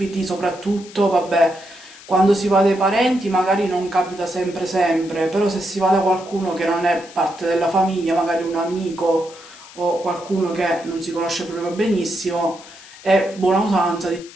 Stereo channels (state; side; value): noise; left; hiss, 19 dB below the sound